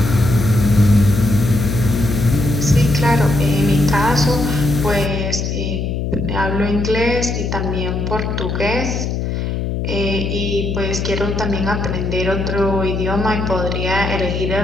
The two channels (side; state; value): left; noise; hum, 2 dB below the sound